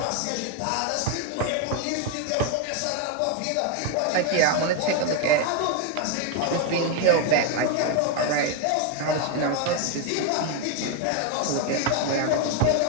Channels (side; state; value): both; different; correlation 0.01